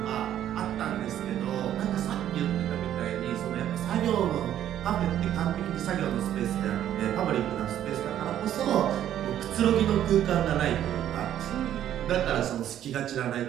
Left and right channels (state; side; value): quieter; left; 11.1 dB